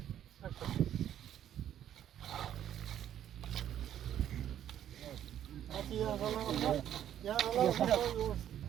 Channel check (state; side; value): quieter; left; 10.7 dB